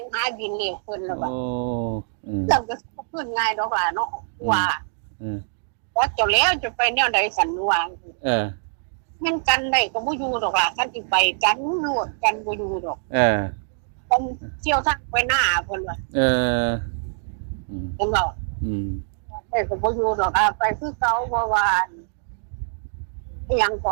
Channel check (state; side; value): silent; left; digital silence